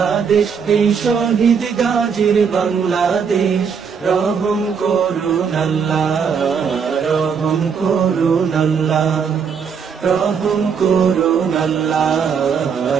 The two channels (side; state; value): left; quieter; 6.4 dB